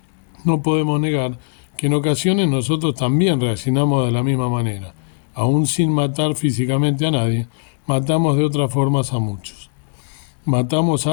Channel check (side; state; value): right; silent; 66 dB below the other